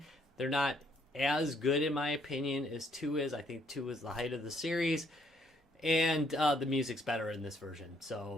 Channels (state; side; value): normal; both; correlation 0.68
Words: They're not as good in my opinion as 2 is. I think 2 is the height of the series, and the music's better in this version,